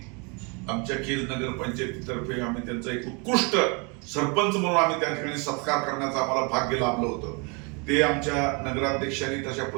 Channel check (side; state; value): left; quieter; 32.1 dB